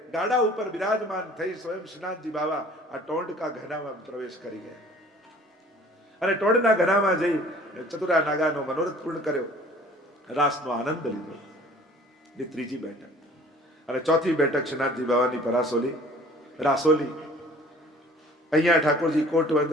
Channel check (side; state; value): both; normal; correlation 0.50